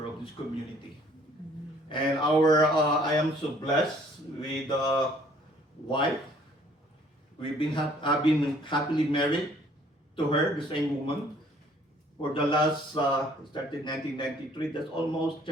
of this community. And I am so blessed with a wife. I've been happily married to her, the same woman, for the last, started 1993, that's almost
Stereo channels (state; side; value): normal; both; correlation 0.59